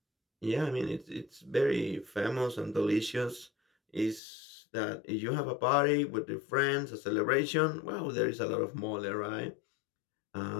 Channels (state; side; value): drops out; right; at 4.2 s